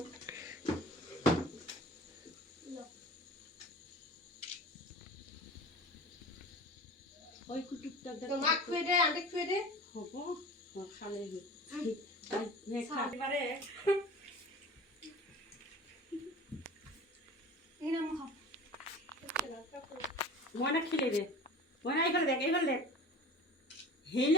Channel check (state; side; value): normal; both; correlation 0.37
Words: ওই কুটুকটা তো মা খুঁয়ে দে aunty খুঁয়ে দে হবো খালে খাতে পারে এই নাম খাও ময়না খেলে দে ময়না এইফালে দেখ